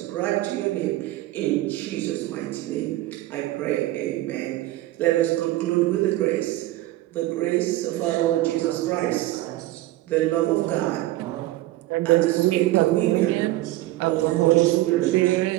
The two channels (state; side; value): quieter; left; 16.5 dB